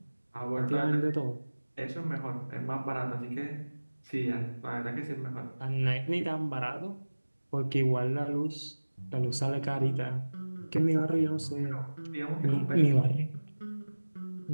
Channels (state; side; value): inverted; both; correlation -1.00